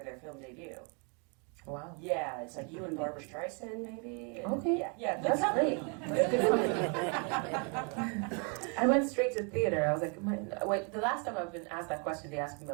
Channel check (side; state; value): left; quieter; 36.6 dB